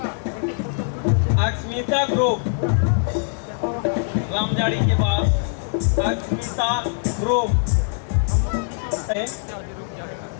अक्षमिता ग्रुप। रामजाड़ी के बाद अक्षमिता ग्रुप।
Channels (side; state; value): right; silent; digital silence